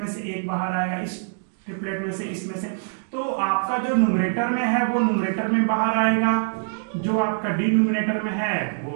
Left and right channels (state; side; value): silent; left; digital silence